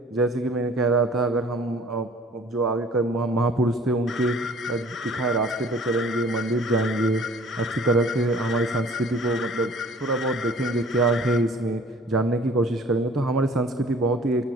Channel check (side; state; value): both; normal; correlation 0.51